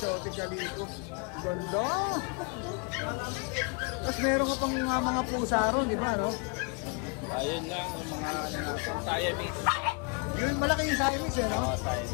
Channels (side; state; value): right; quieter; 34.4 dB